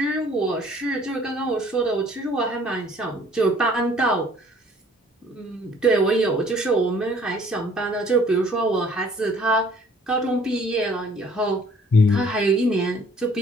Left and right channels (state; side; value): normal; both; correlation 0.57